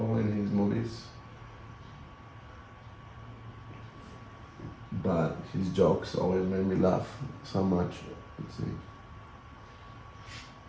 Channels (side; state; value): both; identical; correlation 1.00